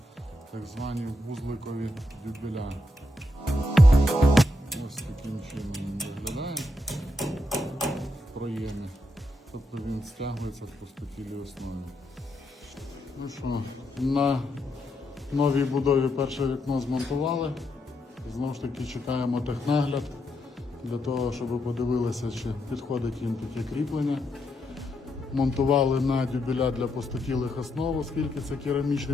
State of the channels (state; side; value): normal; both; correlation 0.81